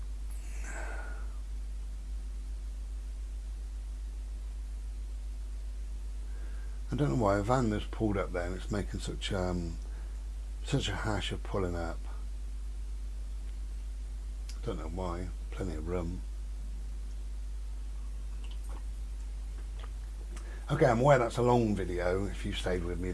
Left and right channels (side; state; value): both; identical; correlation 1.00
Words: I don't know why a van just pulled up there and it's making such a hash of pulling up. I don't know why. Plenty of room. Okay, I'm aware that's a long video. If you stayed with me,